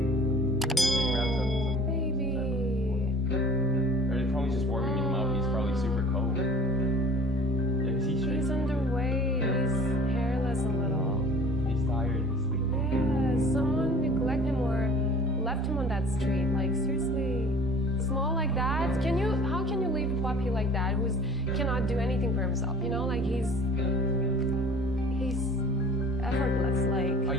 cry. Baby. Or they're probably just warming him up. He's probably super cold. Yeah, 'cause he's He's straight. underweight. He's hairless a little. He's tired. He's sleeping. Yeah, someone neglect him or left him on that street. Like, seriously. Small like that? How can you leave a puppy like that who cannot do anything for himself? You know, like he's effortless. Like, Oh,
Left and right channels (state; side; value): normal; both; correlation 0.47